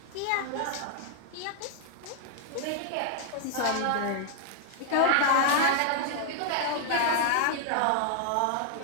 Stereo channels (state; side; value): different; both; correlation 0.00